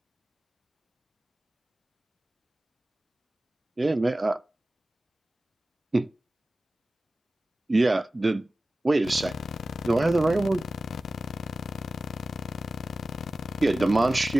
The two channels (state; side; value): normal; both; correlation 0.96